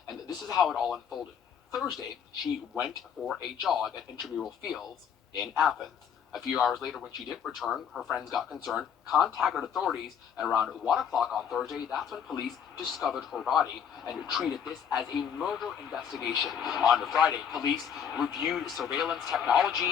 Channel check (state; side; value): quieter; right; 7.8 dB